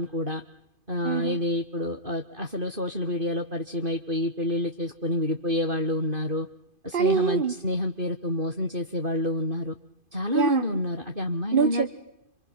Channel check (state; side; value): late; left; 2.5 ms